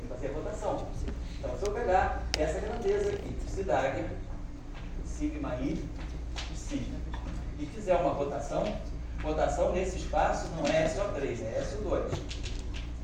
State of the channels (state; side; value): identical; both; correlation 1.00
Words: fazer a rotação. Então, se eu pegar essa grandeza aqui, psi dagger, sigma i, psi, e fizer uma rotação nesse espaço não é SO3, é SO2.